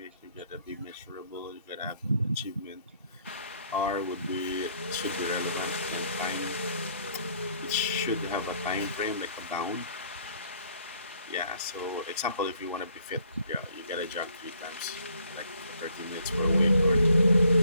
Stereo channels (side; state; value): both; inverted; correlation -0.65